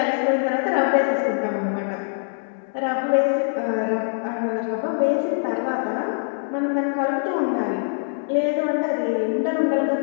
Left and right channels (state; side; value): silent; right; digital silence